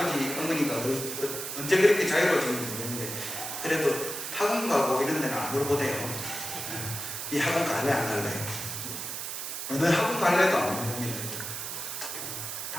어머니가 언제 그렇게 자유로워지는지 모르겠는데 그래도 학원 가고 이런 데는 안 물어보대요. 이 학원 갈래 안 갈래? 어느 학원 갈래도 안 물어봅니다.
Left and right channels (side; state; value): right; noise; hiss, 5 dB below the sound